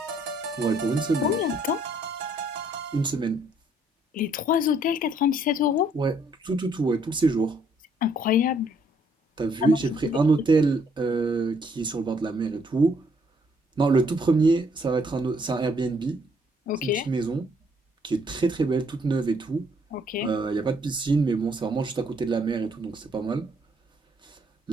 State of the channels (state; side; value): normal; both; correlation 0.66